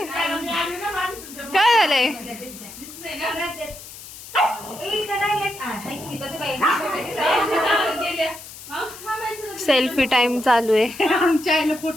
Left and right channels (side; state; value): left; noise; hiss, 15 dB below the sound